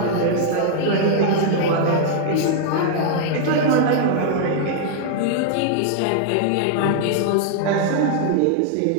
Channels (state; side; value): different; both; correlation 0.00